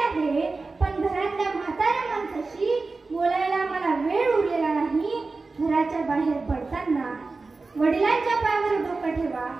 आहे, पण घरातल्या म्हाताऱ्या माणसाशी बोलायला आम्हाला वेळ उरलेला नाही. घराच्या बाहेर पडताना वडिलांच्या पायावर डोकं ठेवा,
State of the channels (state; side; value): quieter; left; 3.8 dB